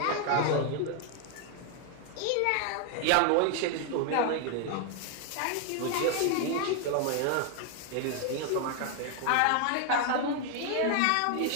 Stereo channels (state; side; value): different; both; correlation 0.00